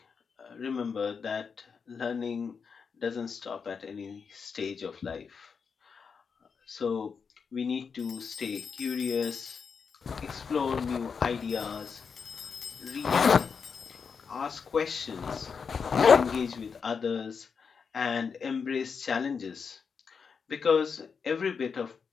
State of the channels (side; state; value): right; quieter; 5.9 dB